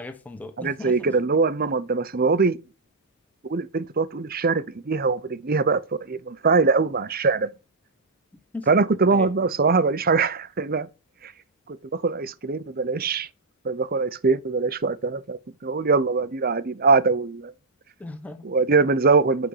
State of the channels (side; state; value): left; quieter; 3.8 dB